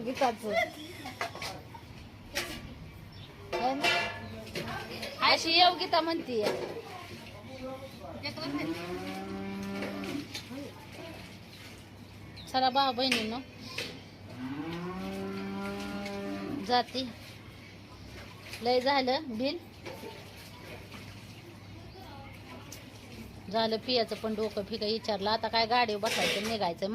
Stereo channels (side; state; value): both; identical; correlation 1.00